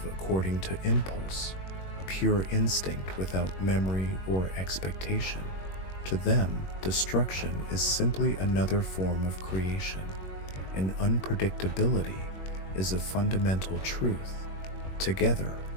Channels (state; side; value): late; right; 21 ms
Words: according to impulse, pure instinct without memory or expectation. To them, destruction is simply another form of creation, and unpredictability is a fundamental truth. Together,